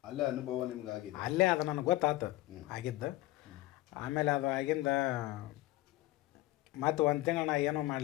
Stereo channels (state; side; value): quieter; right; 17.4 dB